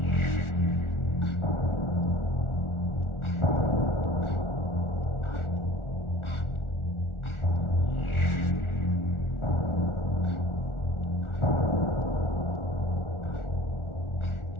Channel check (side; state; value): right; late; 1.4 ms